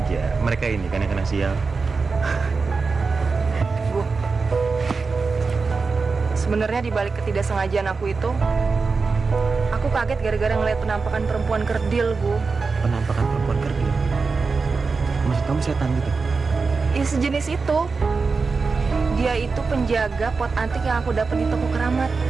mereka ini kan yang kena sial. Bu, sebenarnya di balik ketidaksengajaan aku itu, aku kaget gara-gara ngeliat penampakan perempuan kerdil, Bu. Penampakan perempuan kerdil? Maksud kamu setan gitu? Ya sejenis itu. Dia itu penjaga pot antik yang aku dapat di toko keramat.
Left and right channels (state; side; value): quieter; left; 4.5 dB